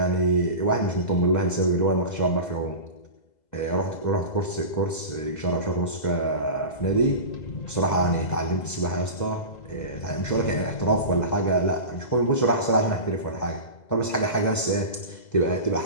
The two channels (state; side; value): late; right; 2.0 ms